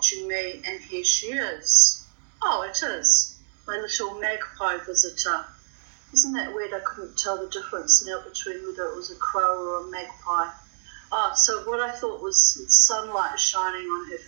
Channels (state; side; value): silent; left; digital silence